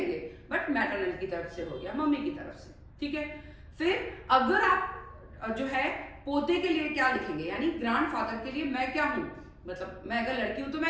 बट मैटरनल की तरफ से हो गया, मम्मी की तरफ से, ठीक है। फिर अगर आप जो है पोते के लिए क्या लिखेंगे, यानी ग्रैंडफादर के लिए मैं क्या हूं, मतलब मैं अगर लड़की हूं तो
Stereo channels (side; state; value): both; identical; correlation 1.00